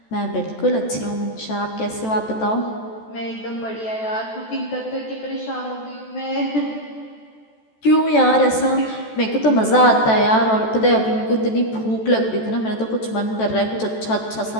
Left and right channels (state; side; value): late; right; 14 ms